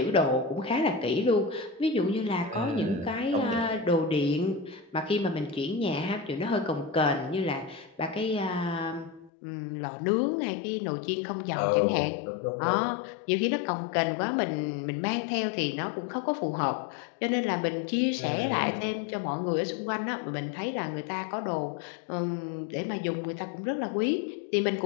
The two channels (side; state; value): right; drops out; at 9.3 s